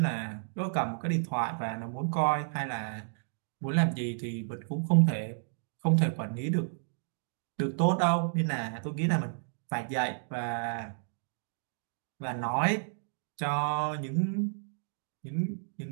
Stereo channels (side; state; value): left; silent; digital silence